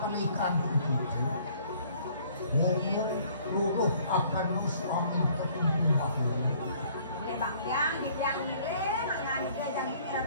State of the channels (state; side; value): inverted; both; correlation -0.58